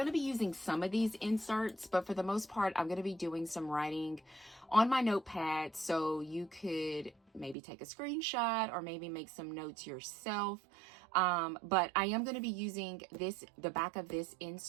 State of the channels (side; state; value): left; drops out; at 7.6 s